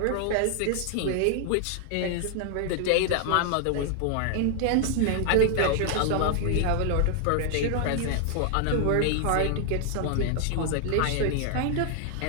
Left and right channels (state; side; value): different; both; correlation 0.00